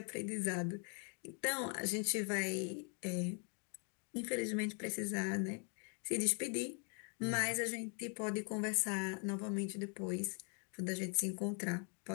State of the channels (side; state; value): right; quieter; 39.6 dB